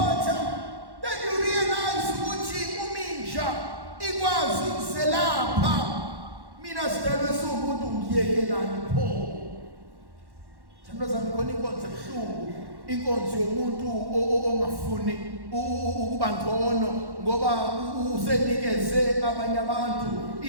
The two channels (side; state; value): left; late; 1.1 ms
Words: Then you realize ukuthi uminja ikwazi ukuselapha. Mina sidalwe siwumuntu ngiyekelani pho. Thando zami khona inkonzo ebuhlungu, inkonzo yomuntu ongafuni ukuba ngcono ngoba usenikeze abanye abantu